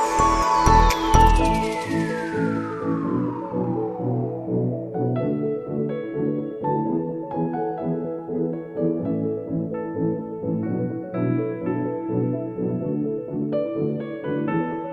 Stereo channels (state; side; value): identical; both; correlation 1.00